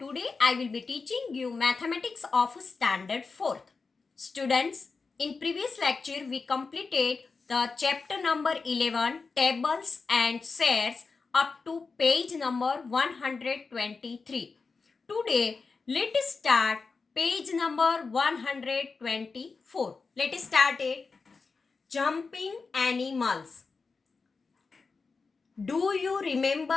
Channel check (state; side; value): quieter; right; 4.5 dB